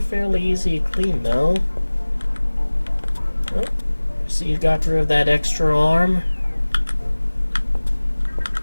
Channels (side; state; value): both; inverted; correlation -1.00